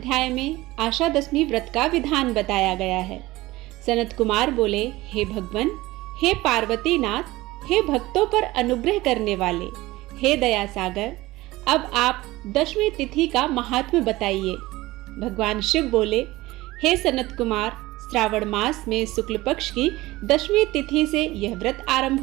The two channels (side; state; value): left; quieter; 18.8 dB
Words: में आशा दशमी व्रत का विधान बताया गया है। सनत कुमार बोले, हे भगवान, हे पार्वती नाथ, हे भक्तों पर अनुग्रह करने वाले, हे दया सागर, अब आप दशमी तिथि का महात्म्य बताइए। भगवान शिव बोले, हे सनत कुमार, श्रावण मास में शुक्ल पक्ष की दशमी तिथि से यह व्रत